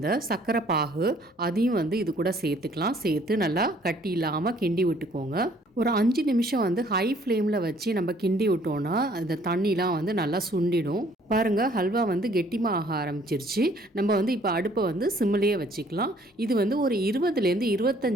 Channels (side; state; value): both; normal; correlation 0.60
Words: சர்க்கரை பாகு அதையும் இது கூட சேர்த்துக்கலாம். சேர்த்து நல்லா கட்டி இல்லாமல் கிண்டி விட்டுக்கோங்க. ஒரு 5 நிமிஷம் ஹை ஃப்ளேமில் வச்சு நம்ம கிண்டி விட்டோன்னா அந்த தண்ணிலாம் நல்லா சுண்டிடும். பாருங்கள், ஹல்வா கெட்டிமாக ஆக ஆரம்பிச்சிருச்சு. நம்ம இப்போ அடுப்பை சிம்லேயே வச்சுக்கலாம். இது ஒரு 20லேருந்து